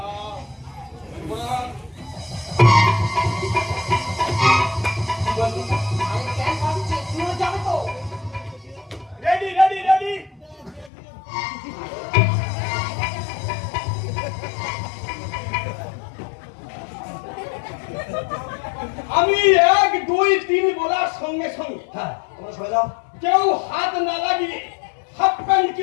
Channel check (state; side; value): drops out; right; at 10.9 s